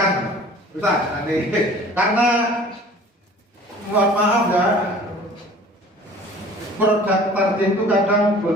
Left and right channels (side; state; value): both; normal; correlation 0.47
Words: Ustaz, ini karena mohon maaf ya, produk tarjih itu kadang